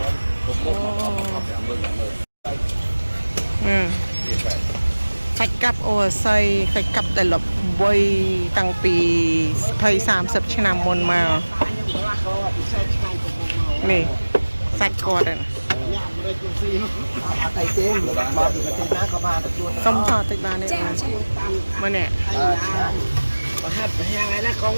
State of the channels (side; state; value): both; inverted; correlation -1.00